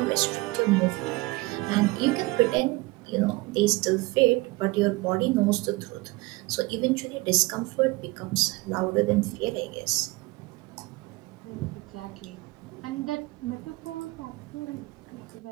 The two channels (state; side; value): quieter; left; 22.4 dB